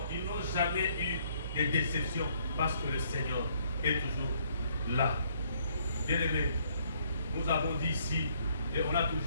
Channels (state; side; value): inverted; both; correlation -0.66